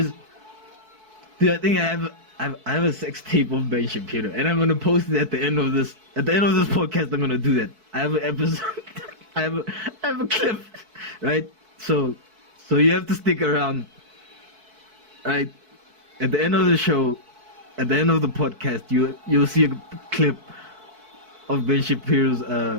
I have a sex tape of Ben Shapiro, and I'm gonna post it at the end of this podcast. I'm gonna do that. I have an episode. I have a clip, right? So you have to stick around, right? At the end of the show, at the end of the podcast, you'll see a clip of Ben Shapiro's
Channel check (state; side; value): late; left; 4.6 ms